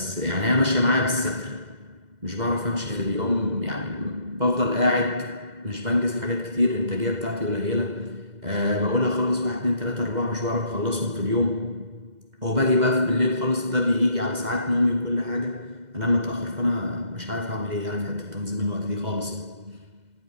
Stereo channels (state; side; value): late; left; 2.0 ms